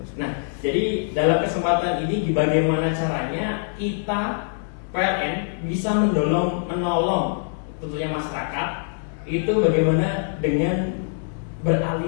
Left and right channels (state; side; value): silent; right; digital silence